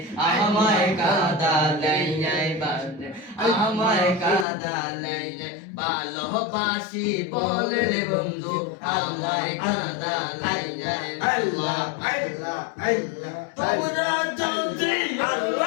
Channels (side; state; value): right; drops out; at 4.5 s